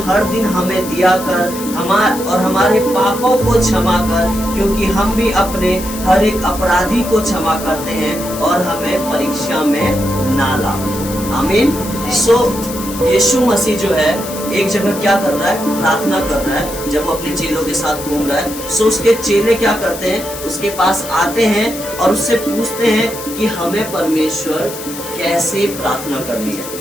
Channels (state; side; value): noise; left; hiss, 11 dB below the sound